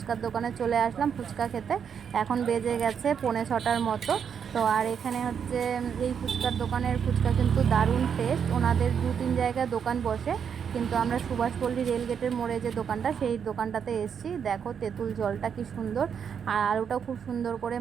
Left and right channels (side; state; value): left; quieter; 7.4 dB